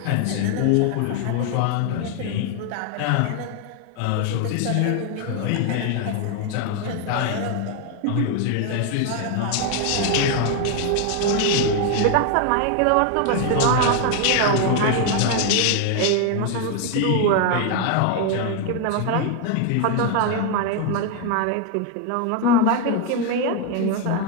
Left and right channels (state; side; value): different; both; correlation 0.01